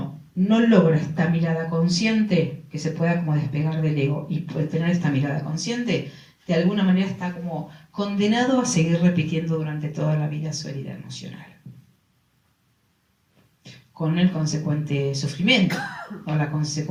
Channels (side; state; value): both; identical; correlation 1.00